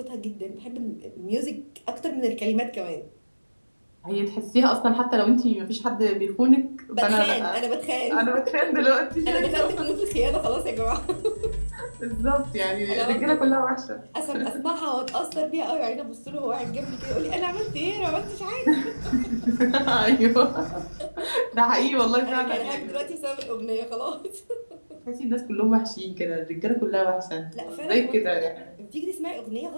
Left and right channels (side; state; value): both; inverted; correlation -1.00